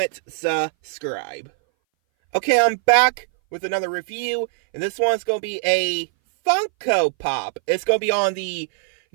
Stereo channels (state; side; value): silent; left; 60 dB below the other